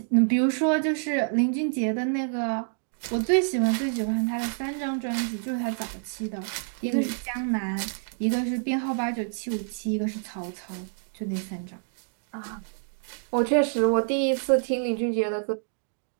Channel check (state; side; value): silent; left; digital silence